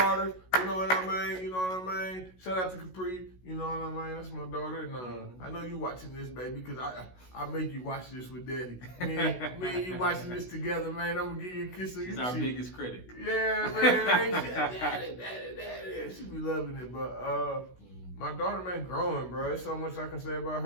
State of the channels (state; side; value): late; right; 16 ms